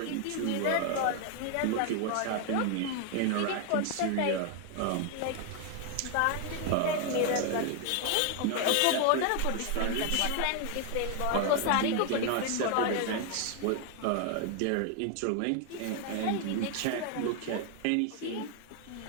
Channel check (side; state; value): both; different; correlation 0.01